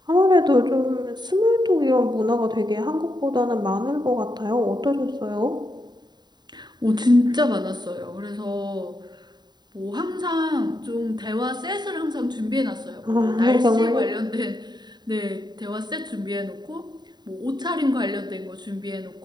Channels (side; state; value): left; late; 0.21 ms